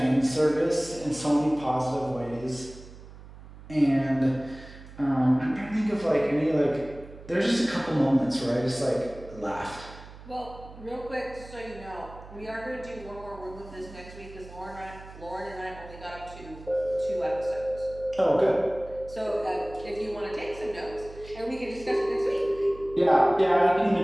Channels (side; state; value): right; noise; hum, 17 dB below the sound